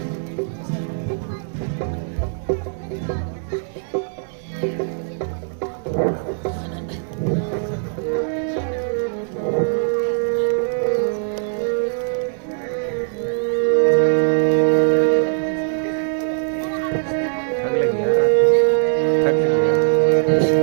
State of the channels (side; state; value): left; silent; digital silence